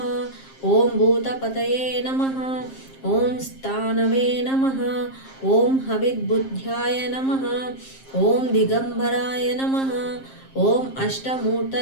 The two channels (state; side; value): late; right; 7.5 ms